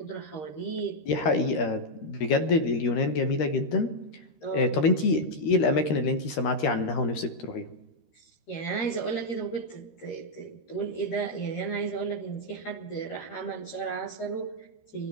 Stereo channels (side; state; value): right; late; 13 ms